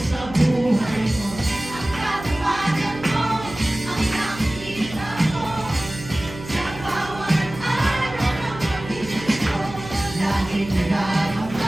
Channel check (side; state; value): right; noise; hum, 13 dB below the sound